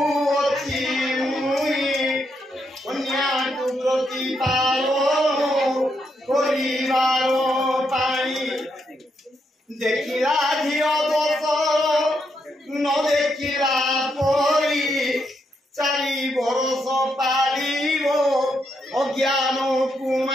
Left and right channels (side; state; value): both; normal; correlation 0.80